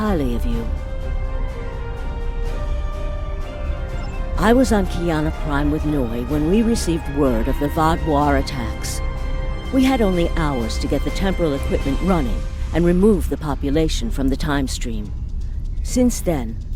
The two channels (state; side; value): identical; both; correlation 1.00